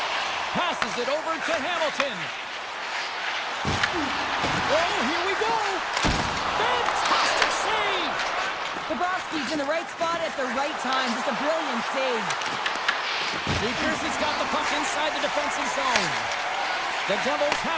Passes it over to Hamilton. Oh, here we go! Fantastic save! Bobrovsky's in the right spot at the right time. Just a brilliant save. New Jersey's got the puck inside the defensive zone. The Devils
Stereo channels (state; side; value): identical; both; correlation 1.00